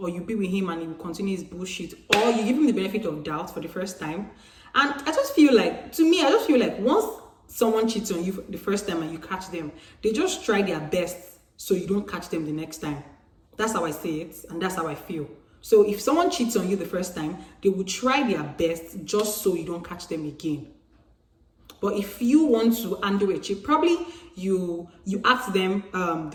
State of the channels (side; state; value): both; identical; correlation 1.00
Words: you be with him and he will continue his bullshit, or you give him the benefit of doubt for the first time. And I just feel like once someone cheats on you the first time and you catch them, they just try their best so you don't catch them the next time. That's how I say it, and that's how I feel. So if someone cheats on you the first time, they will try their best just so you don't catch them again. But if you want to undo a cheat, probably you ask them